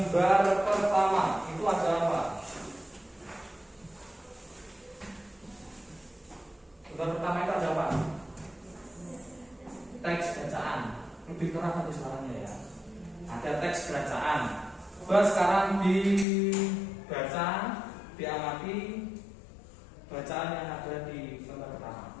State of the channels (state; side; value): drops out; right; at 16.2 s